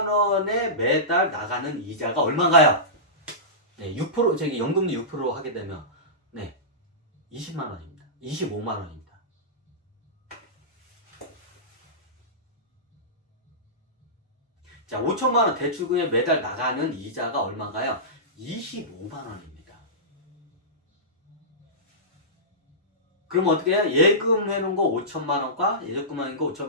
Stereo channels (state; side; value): normal; both; correlation -0.18